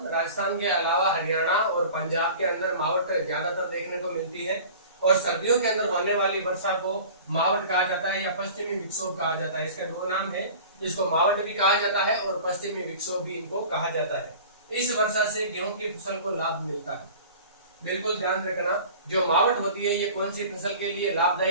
के अलावा हरियाणा और पंजाब के अंदर मावट ज्यादातर देखने को मिलती है, और सर्दियों के अंदर होने वाली वर्षा को मावट कहा जाता है या पश्चिमी विक्षोभ कहा जाता है। इसका 2 नाम है, इसको मावट भी कहा जाता है और पश्चिमी विक्षोभ भी इनको कहा जाता है। इस वर्षा से गेहूं की फसल को लाभ मिलता है। बिल्कुल ध्यान रखना, जो मावट होती है ये कौन सी फसल के लिए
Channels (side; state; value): both; inverted; correlation -0.41